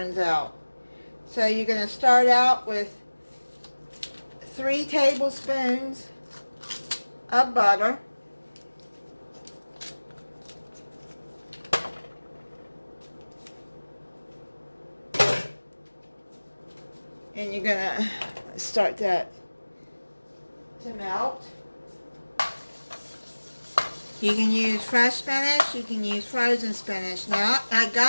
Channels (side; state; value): both; inverted; correlation -1.00